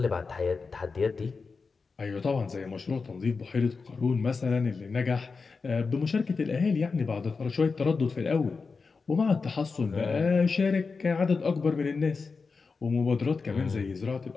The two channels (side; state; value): right; quieter; 4.6 dB